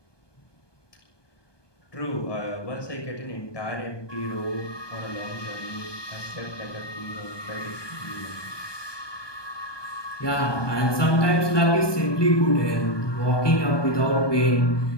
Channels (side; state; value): right; late; 1.2 ms